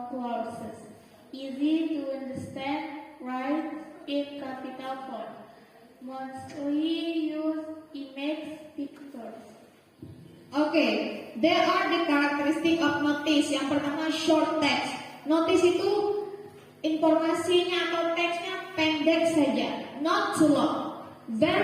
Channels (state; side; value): identical; both; correlation 1.00